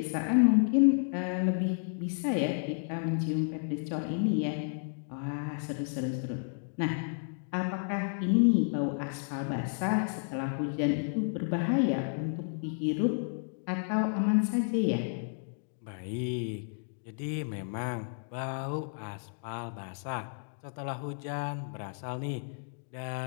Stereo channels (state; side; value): silent; right; digital silence